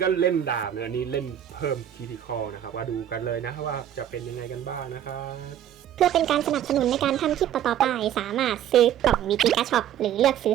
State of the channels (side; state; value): left; quieter; 10.7 dB